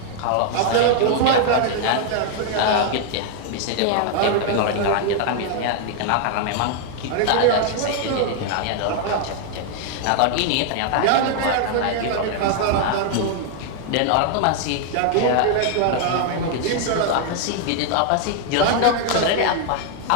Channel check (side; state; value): both; different; correlation 0.00